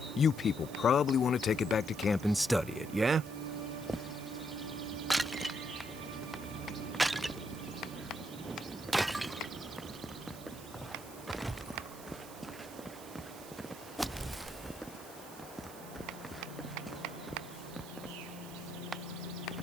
You people probably want to take it back to camp and study it, yeah?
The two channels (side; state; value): right; noise; hiss, 16 dB below the sound